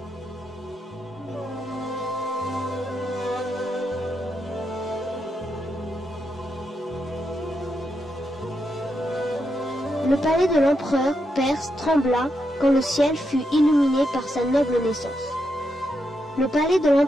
Le palais de l'empereur perse trembla quand le ciel fut illuminé par sa noble naissance. Le palais de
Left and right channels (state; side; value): normal; both; correlation 0.83